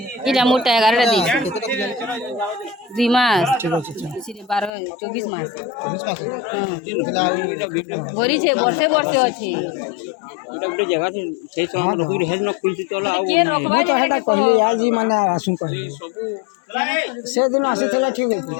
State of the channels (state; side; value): drops out; right; at 4.7 s